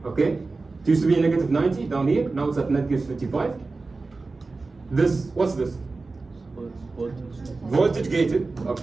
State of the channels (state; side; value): quieter; left; 3.7 dB